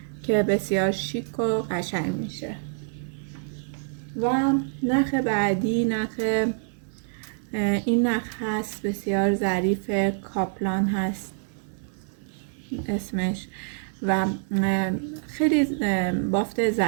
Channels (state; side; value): silent; left; digital silence